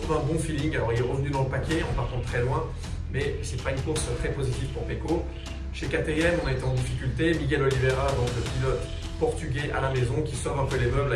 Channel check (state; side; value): identical; both; correlation 1.00